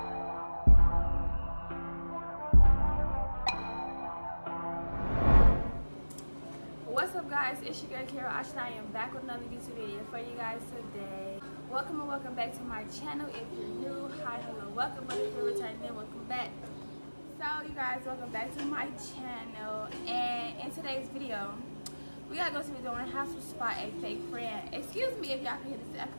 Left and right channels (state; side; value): inverted; both; correlation -1.00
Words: What's up, guys? It's your girl Carol Ashton. I am back with another YouTube video for you guys today. Welcome and welcome back to my channel. If you're new, hi, hello, welcome. But if you're returning, welcome back. So you guys, welcome back to my channel. And in today's video, we are going to be doing how to spot a fake friend. Excuse me if y'all can hear this air